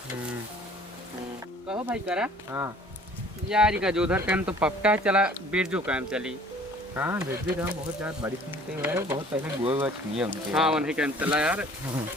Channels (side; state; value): both; normal; correlation 0.52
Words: कहो भाई करा। हाँ यार का जो उधर काम तो पक्का चला बिरजू काम चली। हाँ बिरजू काम बहुत ज्यादा बड़ी सुनते हैं बहुत पहले गुआ छुए उनके। हाँ वही काम चला यार